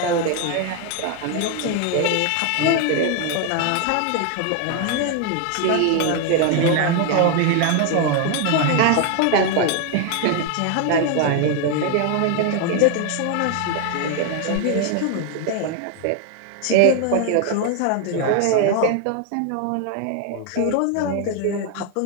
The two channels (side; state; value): both; different; correlation 0.01